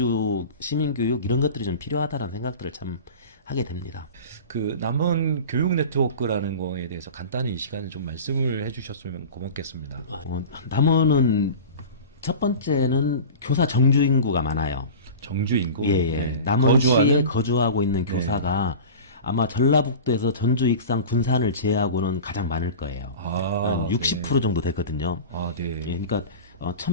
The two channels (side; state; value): both; inverted; correlation -0.34